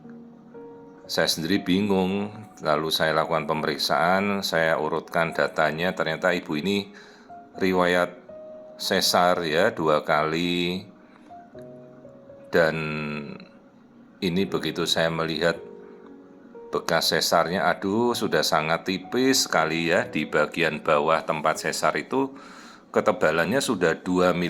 Saya sendiri bingung, lalu saya lakukan pemeriksaan, saya urutkan datanya, ternyata ibu ini riwayat sesar ya 2 kali, dan ini begitu saya melihat bekas sesarnya, aduh sudah sangat tipis sekali ya, di bagian bawah tempat sesar itu ketebalannya sudah 2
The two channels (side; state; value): both; identical; correlation 1.00